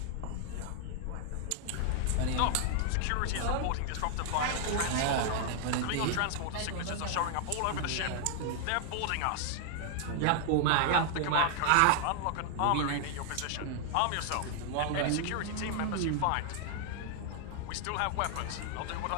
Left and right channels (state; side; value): different; both; correlation 0.00